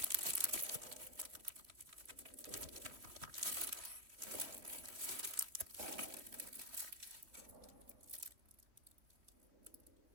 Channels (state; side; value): late; left; 3.4 ms